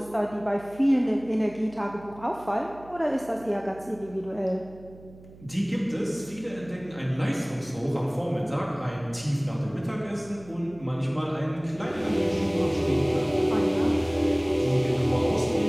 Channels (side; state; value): right; noise; hum, 21 dB below the sound